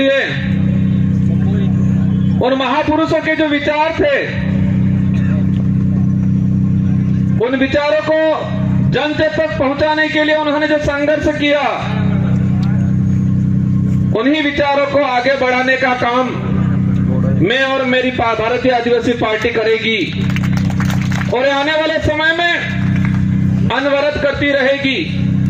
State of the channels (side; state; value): both; identical; correlation 1.00